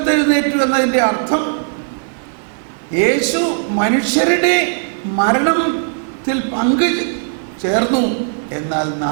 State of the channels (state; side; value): silent; left; digital silence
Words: എന്നതിൻ്റെ അർത്ഥം യേശു മനുഷ്യരുടെ മരണത്തിൽ പങ്കു ചേർന്നു, എന്നാൽ